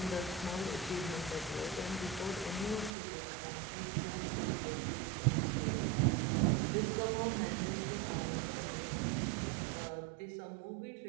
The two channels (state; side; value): drops out; left; at 2.9 s